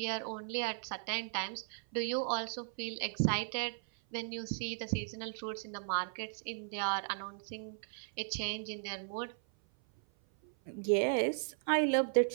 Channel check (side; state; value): left; silent; 53 dB below the other